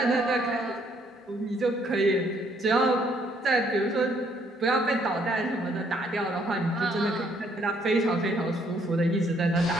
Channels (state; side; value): normal; both; correlation 0.67